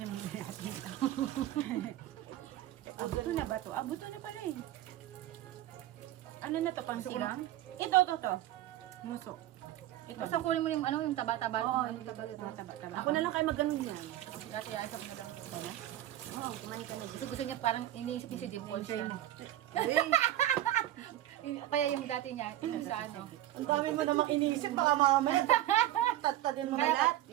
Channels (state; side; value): quieter; left; 13.8 dB